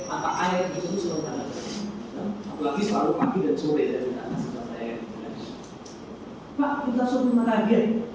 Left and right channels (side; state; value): both; identical; correlation 1.00